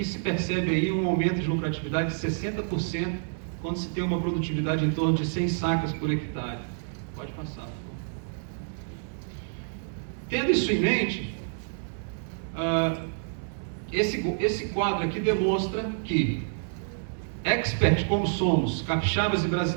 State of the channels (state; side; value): silent; left; 59 dB below the other